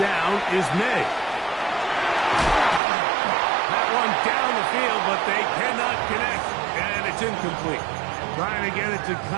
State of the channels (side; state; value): left; drops out; at 2.8 s